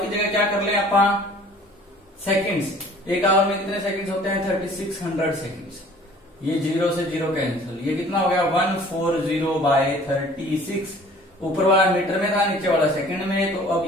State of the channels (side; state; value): both; normal; correlation 0.51